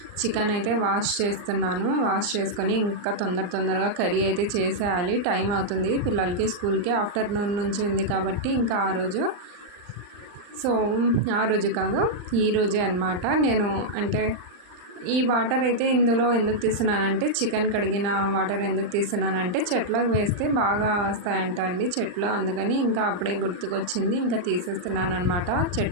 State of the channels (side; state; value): left; late; 39 ms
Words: చికెన్ అయితే వాష్ చేస్తున్నాను. వాష్ చేసుకొని ఇంకా తొందరగా కర్రీ అయితే చేసేయాలి, టైం అవుతుంది పిల్లలకి స్కూల్కి. ఆఫ్టర్నూన్ నుంచి ఉంది కాబట్టి ఇంకా ఆ రోజు కాదు, ఈరోజే అనమాట. నేను అంటే ఈ వాటర్ అయితే ఇందులో ఎందుకు తీస్తున్నానంటే, చికెన్ కడిగిన వాటర్ ఎందుకు తీస్తున్నానంటే చెట్లకు వేస్తే బాగా వస్తాయంట అండి చెట్లు, అందుకని ఇంకా అప్పుడే గుర్తుకొచ్చింది, ఇంకా తీసేస్తున్నాను అనమాట